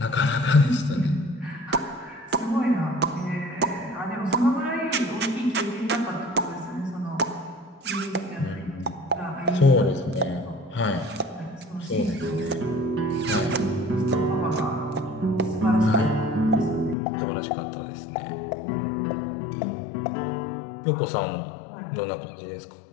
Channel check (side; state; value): right; drops out; at 16.9 s